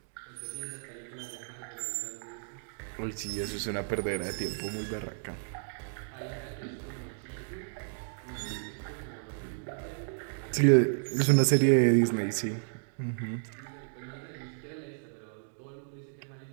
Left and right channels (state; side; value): silent; left; digital silence